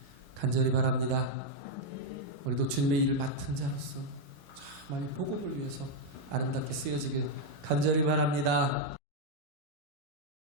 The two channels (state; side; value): normal; both; correlation 0.00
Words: 간절히 바랍니다. 우리도 주님의 일을 맡은 자로서 정말 복음을 위해서 아름답게 쓰여지길 간절히 바랍니다.